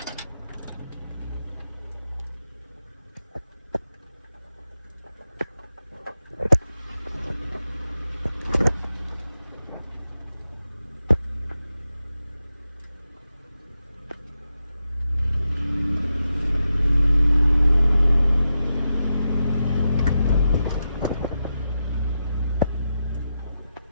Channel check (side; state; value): both; inverted; correlation -0.88